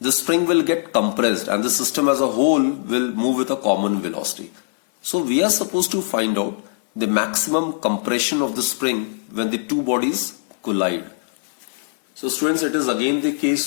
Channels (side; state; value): right; silent; 64 dB below the other